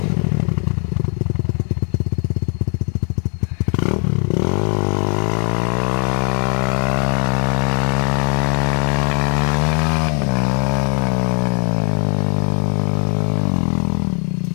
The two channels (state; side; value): quieter; right; 39.8 dB